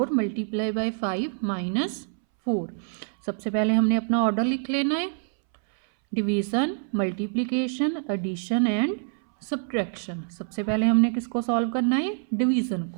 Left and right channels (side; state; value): left; silent; 61 dB below the other